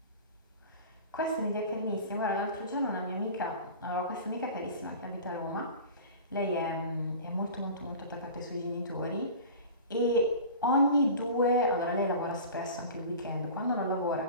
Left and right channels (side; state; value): both; inverted; correlation -0.37